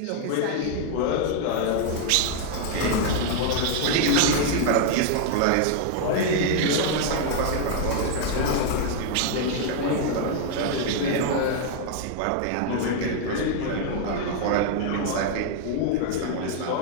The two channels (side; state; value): both; different; correlation 0.00